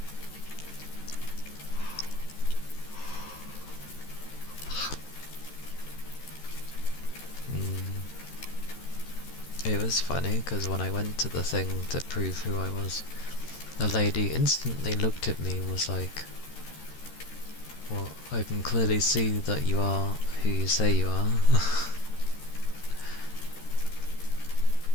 It was funny, because when I went to the thing to prove who I was, the lady instantly looked at me and was like, well, I can clearly see that you are who you say you are.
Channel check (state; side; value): late; right; 13 ms